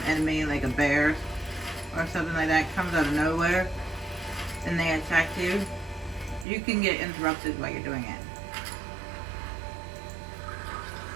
enemy, like a bear or something like that, comes out of nowhere and they attack you, you can get interrupted while you're doing it.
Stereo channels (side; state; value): left; drops out; at 6.5 s